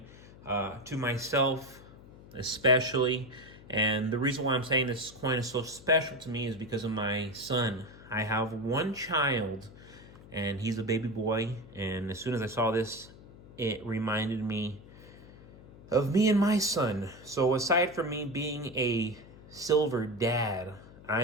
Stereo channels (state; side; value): noise; left; hum, 20 dB below the sound